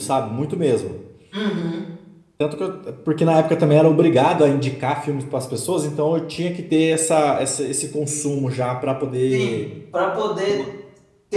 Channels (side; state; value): both; identical; correlation 1.00